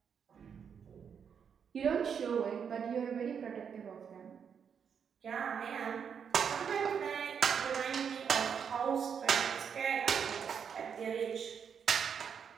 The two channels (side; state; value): left; quieter; 7.2 dB